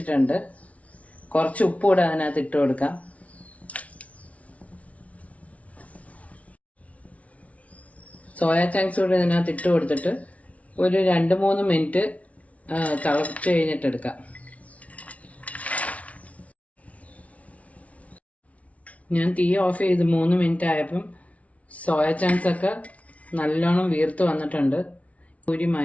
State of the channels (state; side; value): late; right; 0.066 ms